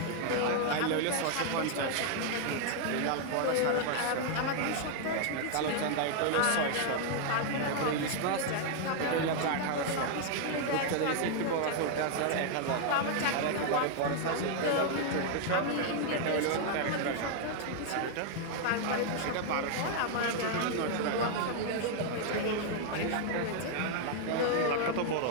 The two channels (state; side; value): different; both; correlation 0.00